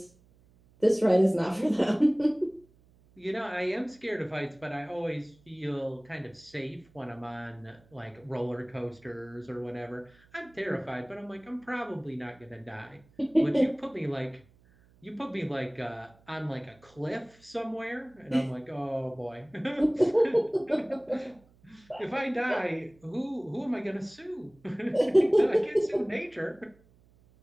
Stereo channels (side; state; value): right; noise; hum, 29 dB below the sound